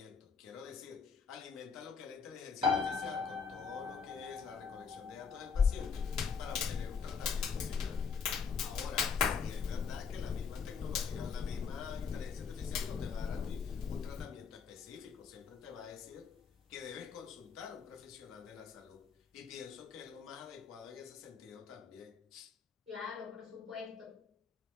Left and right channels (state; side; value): quieter; right; 5.9 dB